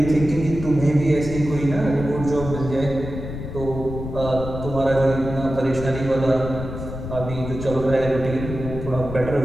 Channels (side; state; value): left; noise; rumble, 8 dB below the sound